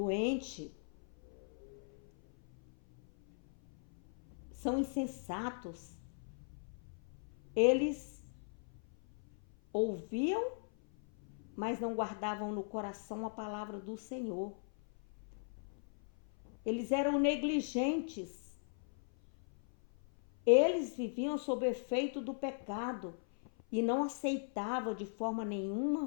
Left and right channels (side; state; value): right; silent; 52 dB below the other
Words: São insensatos. Eles ouviam, mas não guardavam no coração a palavra do Senhor. Eles eram negligentes. Eles viviam sob efeito do pecado e não aceitavam de forma